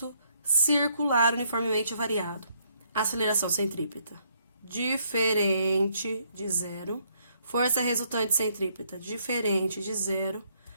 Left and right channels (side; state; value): both; inverted; correlation -0.70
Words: circular uniformemente variado. Aceleração centrípeta, diferente de zero. Força resultante centrípeta, diferente de zero.